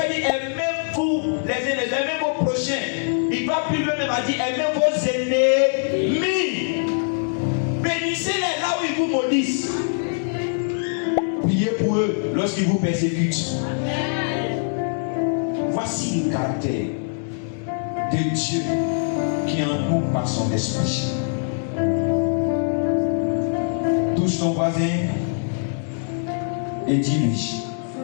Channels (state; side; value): silent; right; digital silence